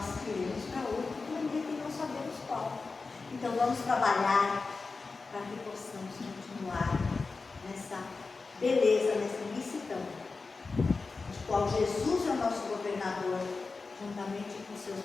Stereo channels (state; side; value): quieter; right; 4.2 dB